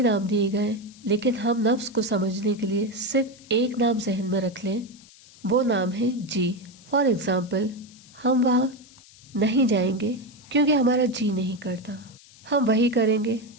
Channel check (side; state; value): left; noise; hiss, 24 dB below the sound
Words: نام دیے گئے، لیکن ہم نفس کو سمجھنے کے لیے صرف ایک نام ذہن میں رکھ لیں، وہ نام ہے جی۔ فار ایگزامپل، ہم وہاں نہیں جائیں گے کیونکہ ہمارا جی نہیں کرتا، ہم وہی کریں گے